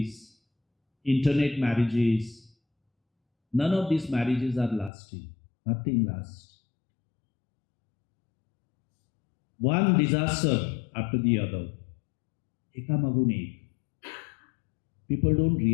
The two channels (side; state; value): right; drops out; at 4.9 s